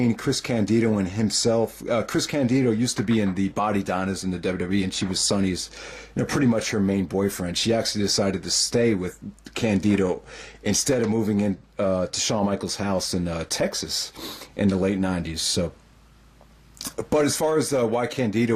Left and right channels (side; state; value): both; identical; correlation 1.00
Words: Chris Candido and himself. Chris Candido used to be in the Body Donnas in the WWE, and she was Sunny's, pretty much her main boyfriend. She actually decided to stay with Candido instead of moving in to Shawn Michaels' house in Texas in the late 90s. So. But as far as why